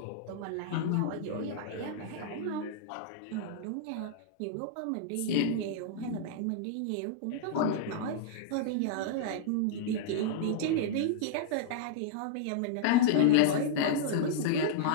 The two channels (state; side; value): different; both; correlation -0.02